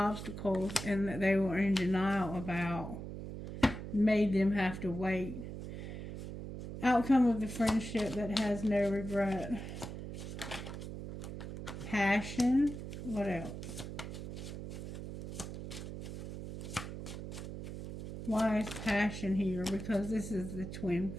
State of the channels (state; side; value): noise; right; hum, 8 dB below the sound